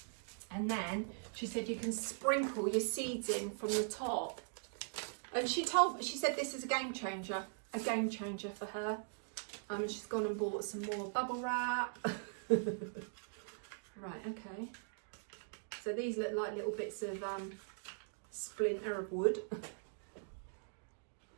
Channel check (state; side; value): silent; left; digital silence